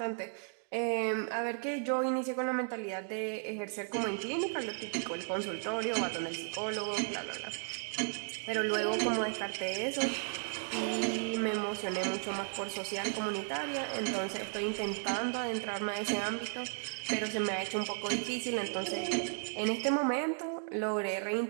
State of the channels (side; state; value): left; silent; 55 dB below the other